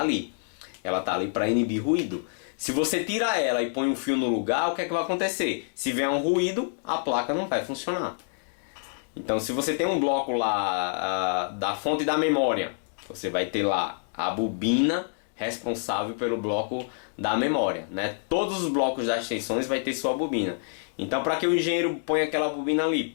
Ela está ali para inibir ruído. Se você tira ela e põe um fio no lugar, o que é que vai acontecer? Se vier um ruído, a placa não vai funcionar. Então se você tem um bloco lá da fonte da memória, você vai ter lá a bobina responsável pelo bloco da memória, né? Todos os blocos das tensões vai ter sua bobina. Então para que o engenheiro ponha aquela bobina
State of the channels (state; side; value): silent; right; digital silence